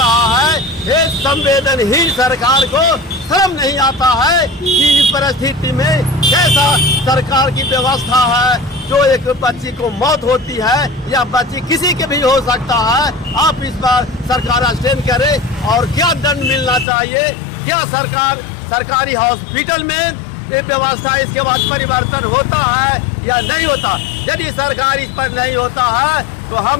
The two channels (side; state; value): right; drops out; at 16.9 s